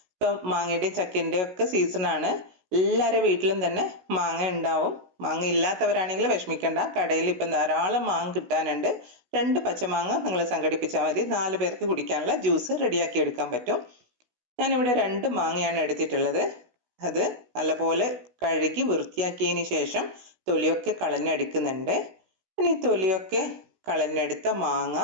ഇപ്പം മാങ്ങയുടെ ചക്കൻ്റെ ഒക്കെ സീസണാണ്. എല്ലാവരുടെ വീട്ടിലും തന്നെ മാങ്ങ ഉണ്ടാവും. മാങ്ങ ഇല്ലാത്തവരാണെങ്കിൽ വിഷമിക്കണ്ട, കടയിൽ ഇപ്പം ധാരാളം മാങ്ങ കിട്ടാനുണ്ട്. 2 പച്ചമാങ്ങ നിങ്ങൾ സംഘടിപ്പിച്ചാൽ മതി, 4 പേർക്ക് കുടിക്കാനുള്ള ജ്യൂസ് റെഡിയാക്കി എടുക്കാൻ പറ്റും. ഞാനിവിടെ 2 മാങ്ങയാണ് എടുത്തിട്ടുള്ളത്. അത് നല്ലപോലെ കഴുകി വൃത്തിയാക്കിയതിന് ശേഷം തൊലിയൊക്കെ കളഞ്ഞെടുക്കുന്നുണ്ട്. ഇനി തൊലിയൊക്കെ കളഞ്ഞെടുത്ത മാങ്ങ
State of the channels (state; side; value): late; left; 16 ms